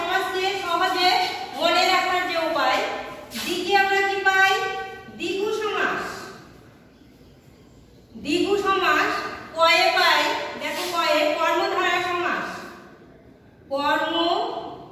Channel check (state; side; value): identical; both; correlation 1.00